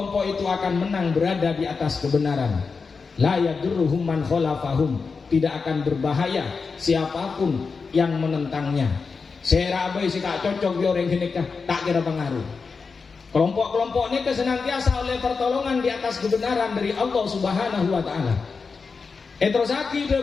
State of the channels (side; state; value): right; quieter; 4.9 dB